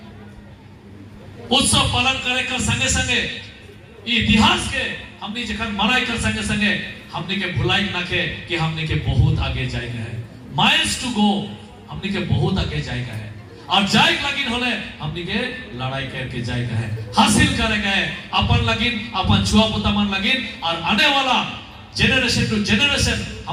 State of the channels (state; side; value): identical; both; correlation 1.00